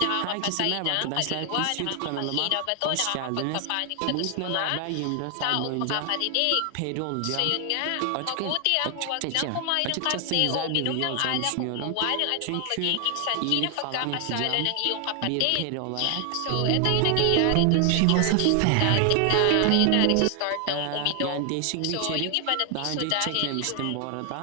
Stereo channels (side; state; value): both; different; correlation 0.00